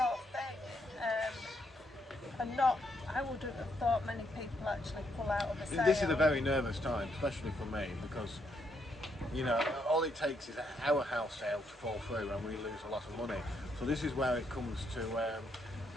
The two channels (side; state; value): both; normal; correlation 0.75